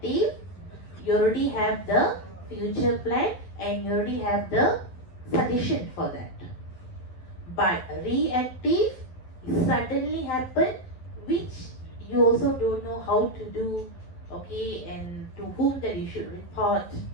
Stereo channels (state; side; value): late; right; 11 ms